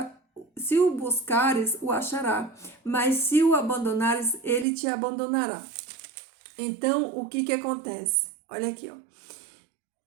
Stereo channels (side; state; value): left; drops out; at 4.7 s